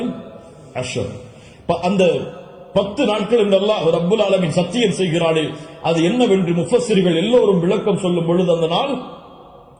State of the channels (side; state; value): both; identical; correlation 1.00